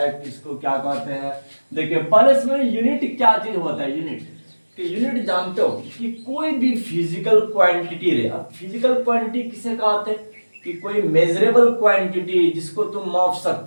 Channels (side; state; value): both; inverted; correlation -1.00